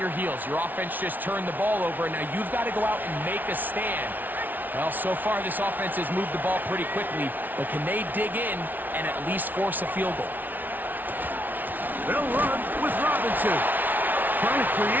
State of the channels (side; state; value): left; late; 0.083 ms